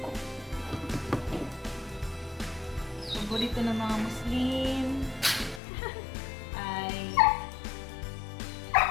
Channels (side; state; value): right; drops out; at 5.6 s